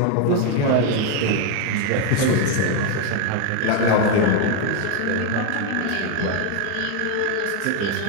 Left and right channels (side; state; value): both; different; correlation 0.01